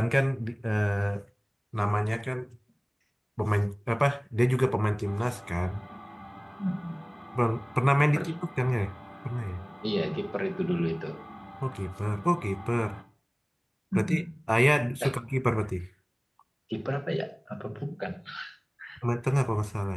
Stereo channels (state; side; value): identical; both; correlation 1.00